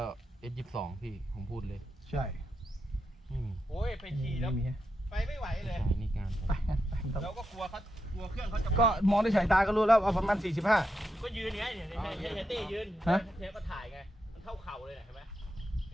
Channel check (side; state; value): both; normal; correlation 0.85